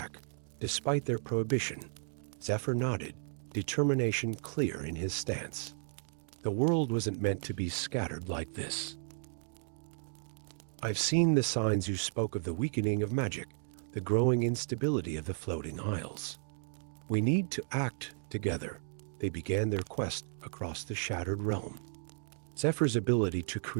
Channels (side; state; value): left; silent; digital silence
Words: despite their prohibition. Zephyr nodded, determination clear in his stance. The world wasn't meant to be scattered like this. I've seen the signs you spoke of, the weakening of magic, the growing instability of the floating isles. We need to act together. They began their quest across the shattered realm. Zephyr's ability to